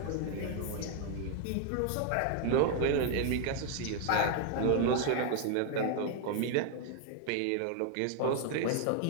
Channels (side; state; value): both; different; correlation 0.00